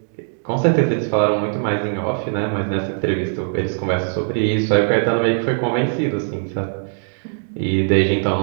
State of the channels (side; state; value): left; silent; digital silence